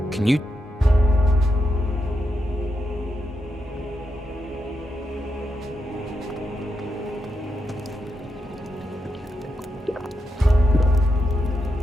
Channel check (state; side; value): normal; both; correlation 0.85